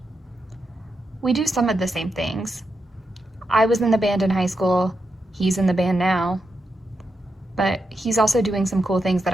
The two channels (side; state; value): both; normal; correlation 0.86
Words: We do some of the same things. I was in the band in high school, he's in the band now, but he's also doing some cool things